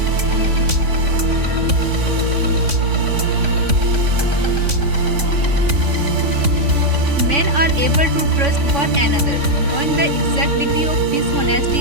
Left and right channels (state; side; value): late; left; 3.5 ms